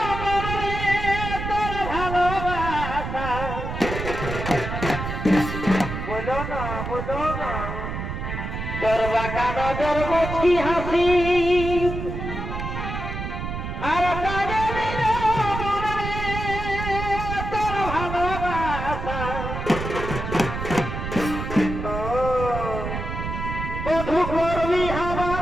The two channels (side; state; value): right; noise; rumble, 5 dB below the sound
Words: মনে তোর ভালোবাসা বলো না তোর বাঁকা নজর মুছি হাসি আর সাজে দিল মনে তোর ভালোবাসা বধু করবি আমার